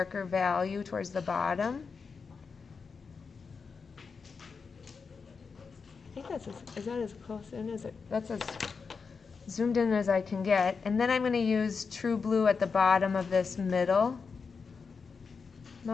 value towards the bottom. I think is that as close in as it, that's as zoomed in as I can get. And then I'm going to use true blue at the bottom of this middle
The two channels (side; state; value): right; quieter; 5.2 dB